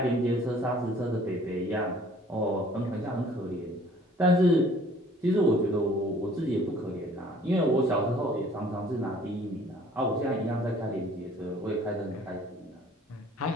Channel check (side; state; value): both; normal; correlation 0.55